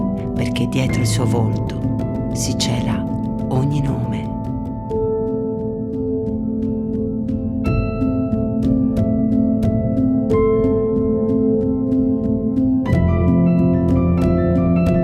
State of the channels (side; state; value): both; identical; correlation 1.00